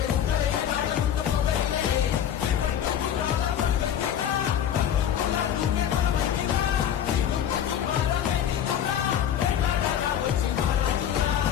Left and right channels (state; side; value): quieter; right; 9.7 dB